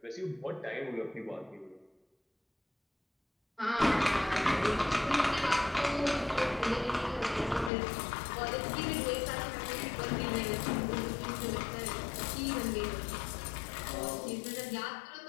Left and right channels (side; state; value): right; drops out; at 7.7 s